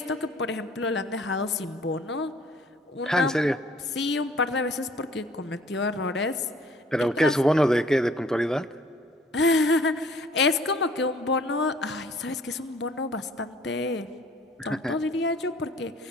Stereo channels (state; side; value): normal; both; correlation 0.56